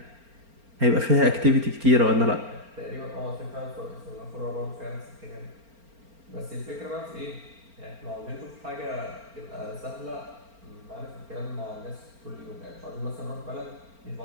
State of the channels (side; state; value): left; late; 4.4 ms